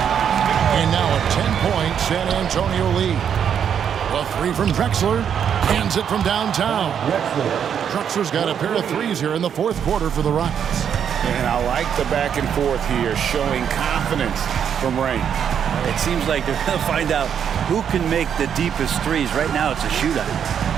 And now a 10-point San Antonio lead. The 3 from Drexler. Hands it from downtown. Drexler's got a pair of threes here in the fourth quarter for the Rockets. And I like the back and forth here, showing confidence from Rain. It seems like they're going to find out who can make the deepest threes. Right now it's a shootout.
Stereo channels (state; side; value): quieter; left; 8.2 dB